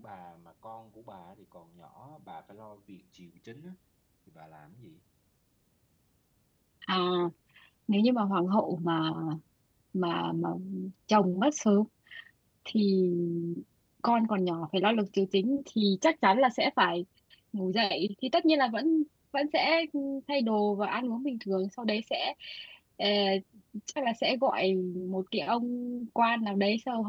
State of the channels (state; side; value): identical; both; correlation 1.00